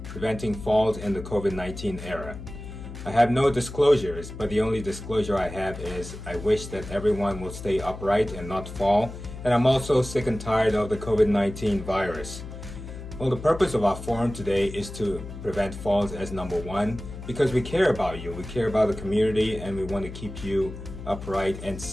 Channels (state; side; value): noise; left; hum, 11 dB below the sound